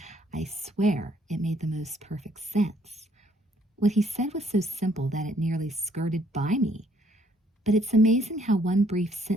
I swear it made the most perfect sense. What he said was so simple that it nearly skirted by me. But it's amazing how one brief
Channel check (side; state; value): both; normal; correlation 0.65